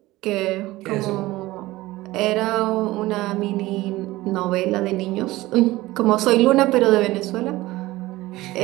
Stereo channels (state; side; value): quieter; left; 18.4 dB